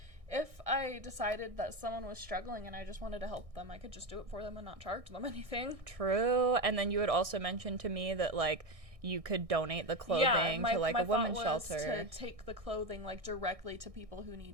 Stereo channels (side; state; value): left; late; 1.6 ms